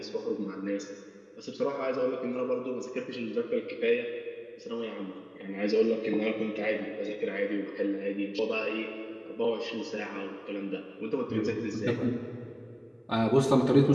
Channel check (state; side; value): identical; both; correlation 1.00